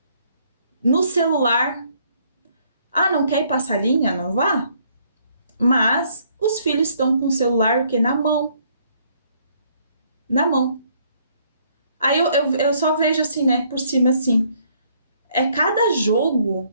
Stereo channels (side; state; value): both; inverted; correlation -0.66